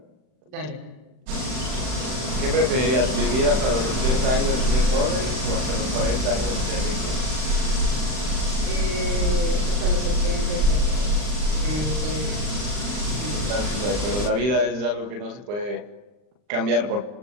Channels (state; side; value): late; left; 39 ms